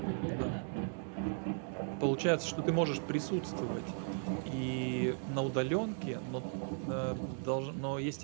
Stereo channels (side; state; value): left; silent; 53 dB below the other